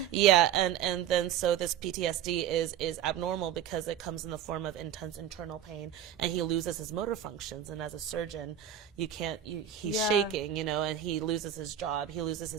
Yeah. And then so this PTSD is abnormal because it comes in the form of intense internal pain, and he loses his motor functions. And as a surgeon, he's shaking, and he loses his job. He loses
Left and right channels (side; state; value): left; quieter; 9.8 dB